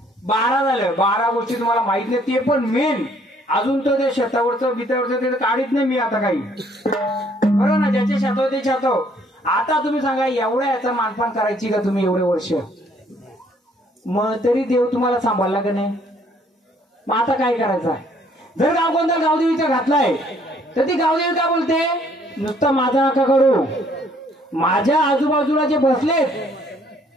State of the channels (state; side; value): normal; both; correlation 0.63